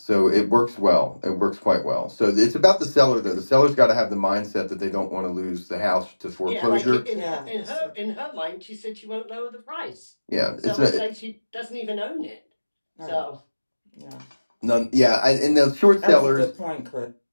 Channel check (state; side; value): inverted; both; correlation -1.00